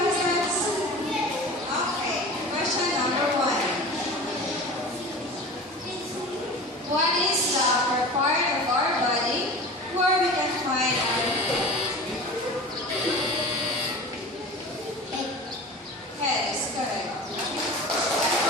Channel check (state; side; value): normal; both; correlation 0.35